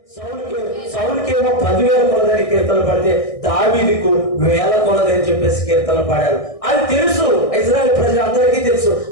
సౌలుకేమో 10,000 కొలదని కీర్తనలు పడితే దావీదుకు 1000 కొలదని చెప్పేసి కీర్తనలు పాడారు. అది తెలుసు, ఇశ్రాయేల్ ప్రజలందరికీ తెలుసు.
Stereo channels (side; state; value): right; late; 1.6 ms